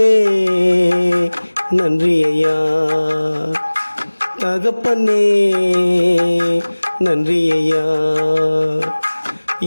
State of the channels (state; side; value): inverted; both; correlation -1.00